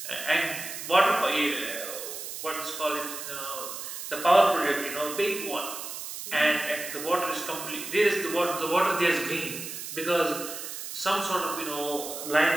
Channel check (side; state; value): right; noise; hiss, 8 dB below the sound